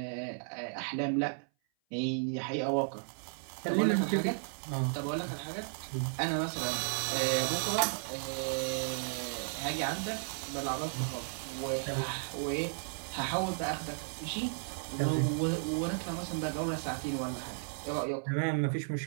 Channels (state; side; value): silent; left; 55 dB below the other